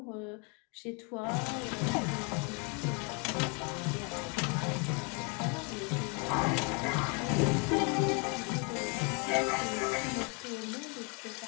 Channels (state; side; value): quieter; right; 34.4 dB